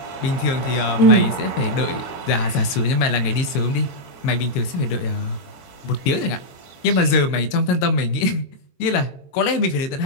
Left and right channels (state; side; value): late; right; 22 ms